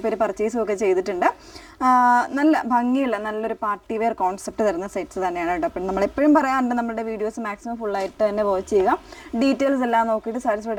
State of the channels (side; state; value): both; identical; correlation 1.00